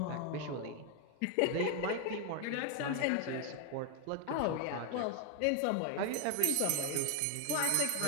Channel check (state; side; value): different; both; correlation 0.01